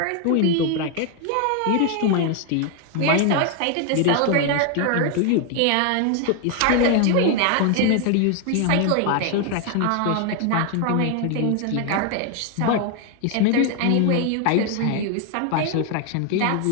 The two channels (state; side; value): different; both; correlation 0.00